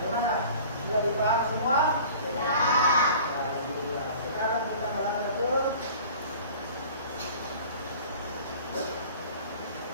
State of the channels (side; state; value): both; inverted; correlation -0.45